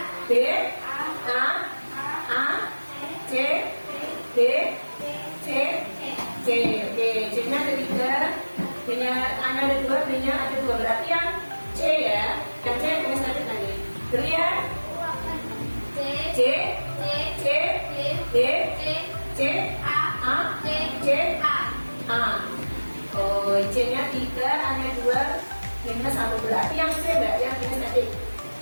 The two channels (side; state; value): both; inverted; correlation -1.00